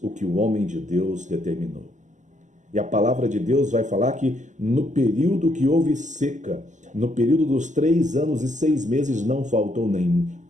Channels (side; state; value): left; late; 0.35 ms